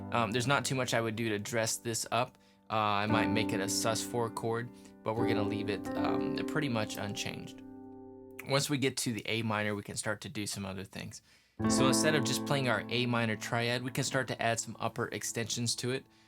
there's not too much I would do to dress this up. I might make it a sus4 chord, but we're gonna leave it pretty much unchanged. Once we get to the A minor, we can start to do some other things. So instead of just playing our A minor triad, we can start to add some upper extensions to it,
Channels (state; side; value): identical; both; correlation 1.00